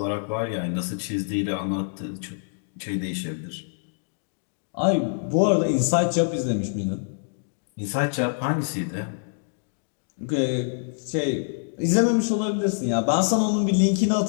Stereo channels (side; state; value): right; silent; digital silence